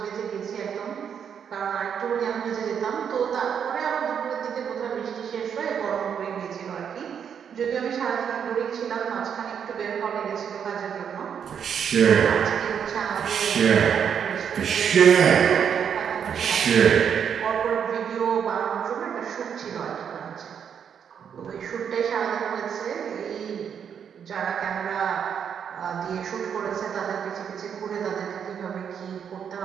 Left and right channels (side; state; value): left; quieter; 7.8 dB